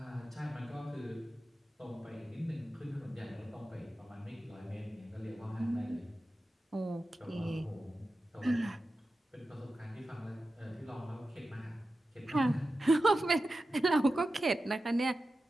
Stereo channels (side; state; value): both; normal; correlation 0.93